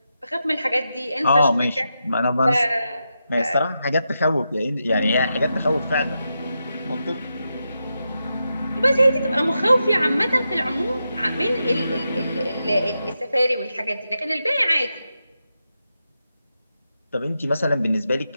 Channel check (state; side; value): inverted; both; correlation -0.87